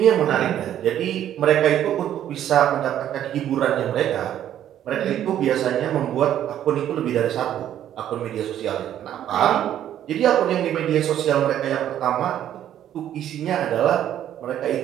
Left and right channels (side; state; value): left; quieter; 11.1 dB